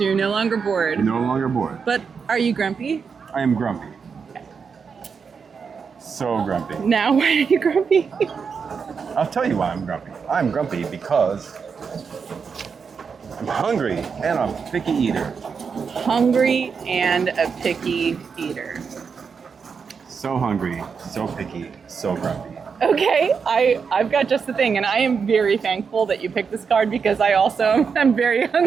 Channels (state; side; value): quieter; left; 5.9 dB